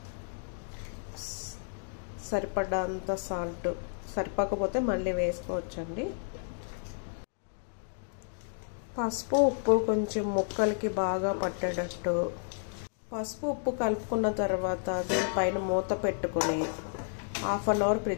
సరిపడంత సాల్ట్, సరిపోకపోతే మళ్ళీ వేసుకోవచ్చండి. పసుపు ఉప్పు కొంచెం ముక్కలకి బాగా పట్టేటట్టు పసుపు ఉప్పు కలుపుకున్న తర్వాత దీనిపైన మూత పెట్టుకుని హాఫ్ అన్ అవర్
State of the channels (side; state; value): right; silent; digital silence